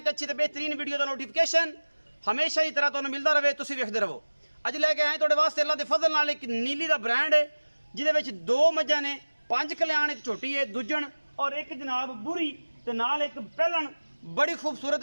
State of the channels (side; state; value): both; inverted; correlation -1.00